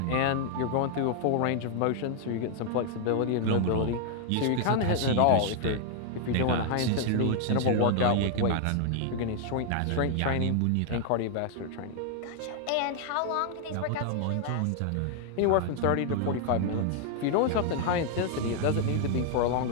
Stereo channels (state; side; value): different; both; correlation 0.00